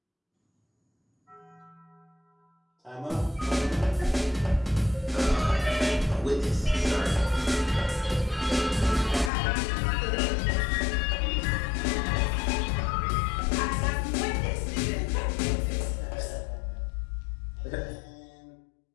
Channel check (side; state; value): right; drops out; at 9.3 s